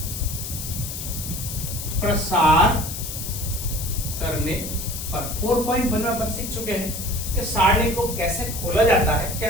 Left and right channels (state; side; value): noise; left; hiss, 7 dB below the sound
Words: प्रसार करने पर 4.1 में अपन सीख चुके हैं कि सारणी को कैसे खोला जाता है, क्या